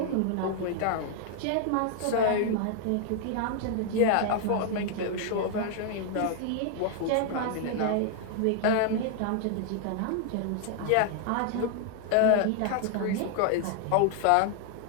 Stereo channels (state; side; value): different; both; correlation 0.00